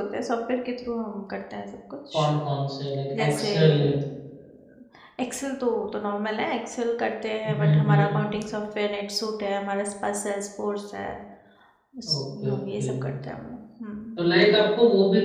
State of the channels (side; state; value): both; identical; correlation 1.00